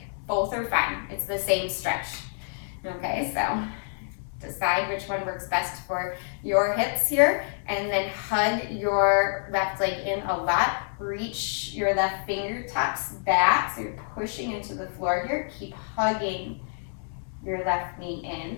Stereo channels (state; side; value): silent; right; digital silence